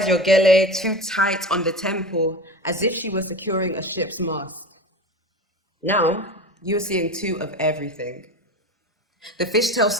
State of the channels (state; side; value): normal; both; correlation 0.28